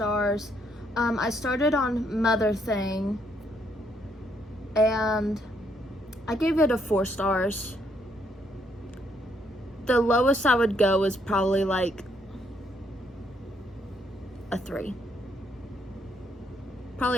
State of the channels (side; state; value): both; normal; correlation 0.72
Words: I started on Mother Thing, and I gave it a 4 stars. The lowest I would go is probably like a 3.